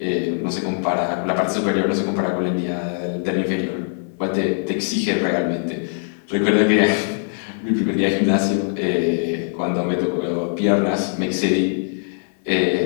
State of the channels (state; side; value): silent; right; digital silence